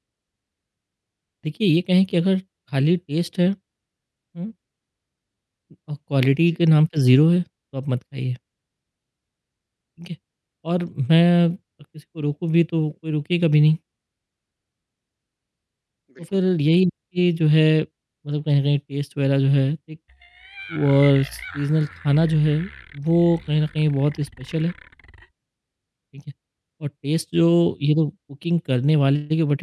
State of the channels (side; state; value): both; identical; correlation 1.00